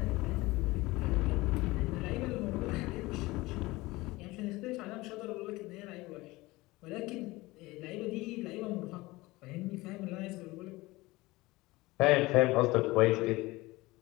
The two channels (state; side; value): quieter; right; 20.7 dB